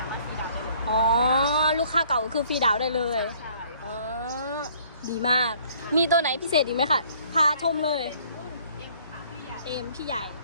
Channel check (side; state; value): both; inverted; correlation -0.58